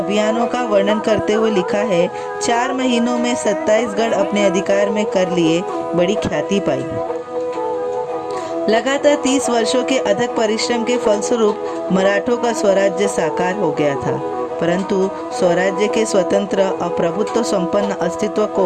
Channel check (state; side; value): identical; both; correlation 1.00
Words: का वर्णन करते हुए लिखा है, 4 महीनों में 27 गढ़ अपने अधिकार में कर लिए, बड़ी ख्याति पाई। लगातार 30 वर्षों के अथक परिश्रम के फलस्वरूप मराठों का स्वराज्य साकार हो गया था, परंतु स्वराज्य के स्वतंत्र और प्रभुत्व संपन्न अस्तित्व को